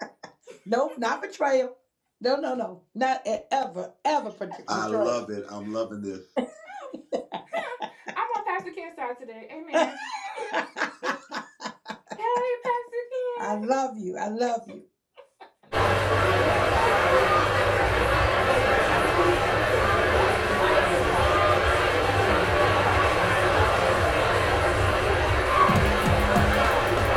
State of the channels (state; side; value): identical; both; correlation 1.00